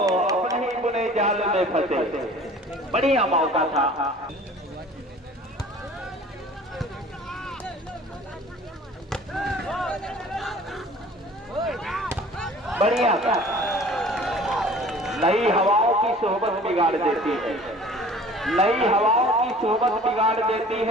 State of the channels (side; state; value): both; normal; correlation 0.47